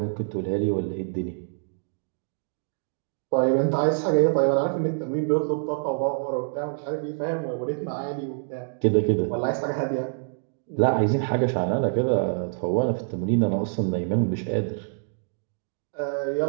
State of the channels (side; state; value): left; silent; digital silence